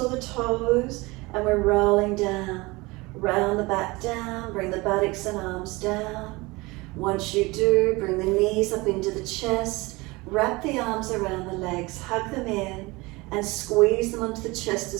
the toes and we're rolling down. Round the back down, bring the buttocks and arms down. Once you do, bring the knees up into the chest, wrap the arms around the legs, hug them in and squeeze them onto the chest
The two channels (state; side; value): quieter; left; 23.2 dB